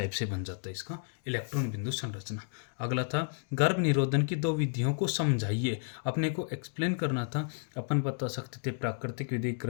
से बन जाता है इसका इलेक्ट्रॉन बिंदु संरचना। अगला था गर्भ निरोधन की दो विधियों को समझाइए। अपने को एक्सप्लेन करना था। अपन बता सकते थे प्राकृतिक विधि,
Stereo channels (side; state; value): right; silent; digital silence